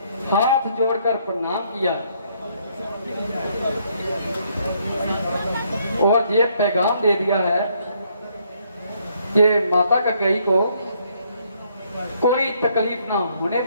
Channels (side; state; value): both; inverted; correlation -0.69